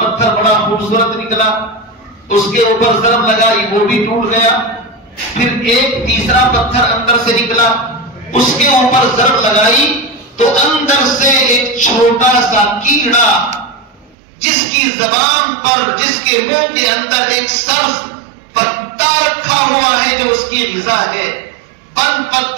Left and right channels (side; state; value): left; drops out; at 14.2 s